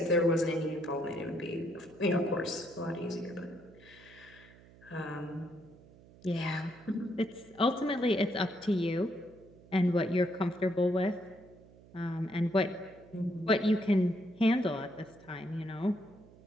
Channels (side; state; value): right; noise; hum, 23 dB below the sound